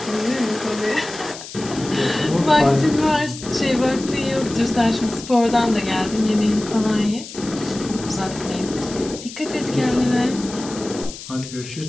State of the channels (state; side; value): noise; left; hiss, 13 dB below the sound